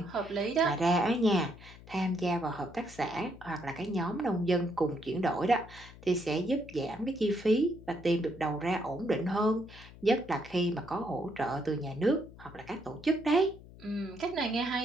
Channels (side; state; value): left; noise; hum, 19 dB below the sound